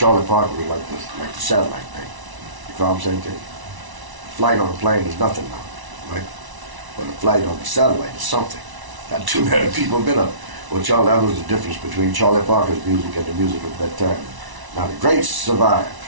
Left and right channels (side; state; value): left; late; 1.0 ms